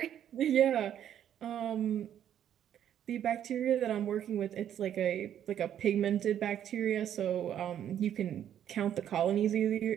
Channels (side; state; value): left; quieter; 10.2 dB